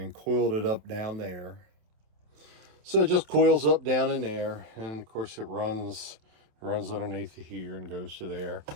coiled it up down there. So it just coils up down in there, and of course it runs underneath here and goes to there.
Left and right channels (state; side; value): late; left; 27 ms